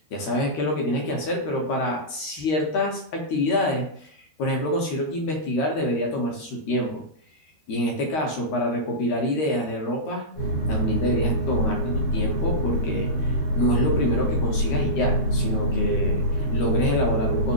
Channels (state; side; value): late; right; 13 ms